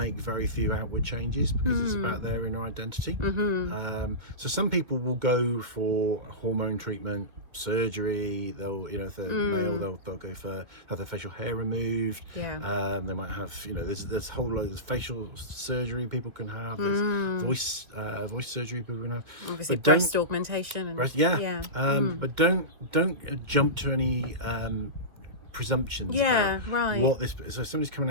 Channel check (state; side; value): late; left; 2.3 ms